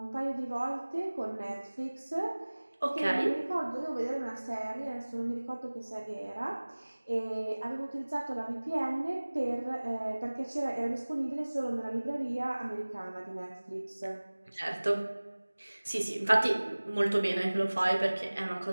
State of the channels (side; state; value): both; inverted; correlation -1.00